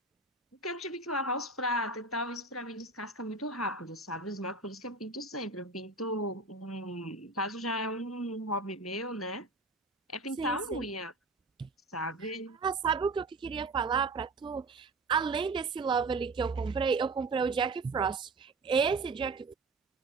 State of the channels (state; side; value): quieter; left; 3.4 dB